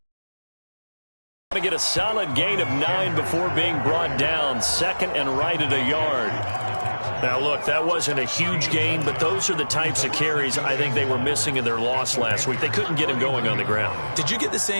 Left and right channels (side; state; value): both; inverted; correlation -1.00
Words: To get a solid gain of 9 before being brought down. 2nd and right at a yard. Now, look, that wasn't a huge gain, but those are the types of carries I think they were missing in their loss last week. They couldn't get him going on the ground. Did you get the